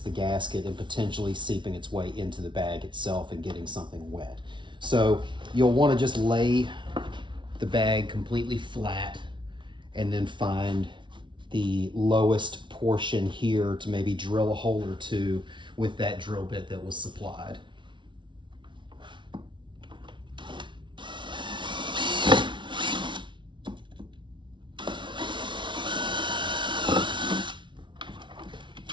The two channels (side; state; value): left; late; 0.24 ms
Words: the gasket and potentially seeping its way into the bag itself and getting something wet. So you'll want to just lay the bag completely flat and then find the lowest portion here to maybe drill a hole or two with that drill bit that was supplied.